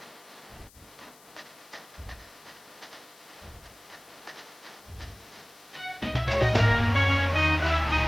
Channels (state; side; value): noise; left; hiss, 25 dB below the sound